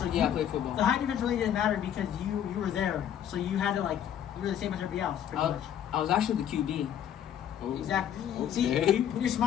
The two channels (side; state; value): right; quieter; 9.8 dB